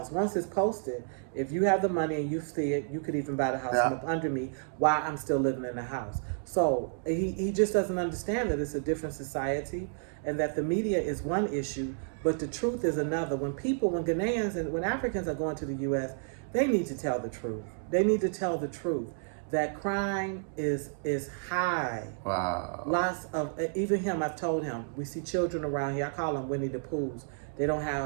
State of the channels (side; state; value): left; silent; digital silence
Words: once it's posted. If you have the money and you see it, you could even buy the house from up under me while I'm still living in the house. So he just doesn't understand that it's a different society and that the media is one issue, but the truth is another. When Ghanaians and when Africans are going to the U.S., they need to tell the truth. They need to tell the truth that crime is high. Wow. Lots of, even him, I've told him, we see children around here, I call them Winnie the Poohs. They don't